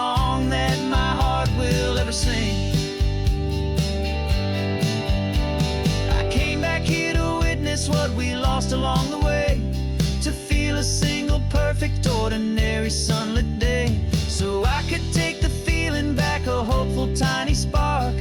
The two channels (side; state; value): both; identical; correlation 1.00